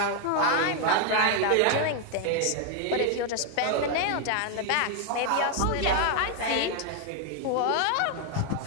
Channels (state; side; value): different; both; correlation 0.00